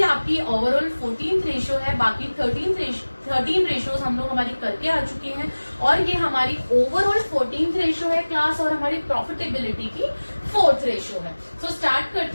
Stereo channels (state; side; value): inverted; both; correlation -1.00